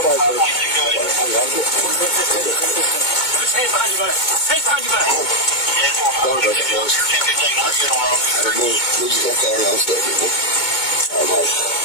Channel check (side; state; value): right; late; 2.2 ms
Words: Hands behind your back. Hands behind your back.